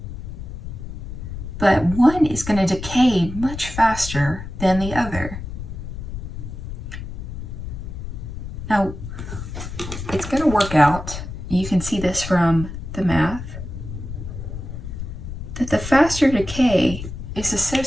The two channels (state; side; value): noise; left; rumble, 8 dB below the sound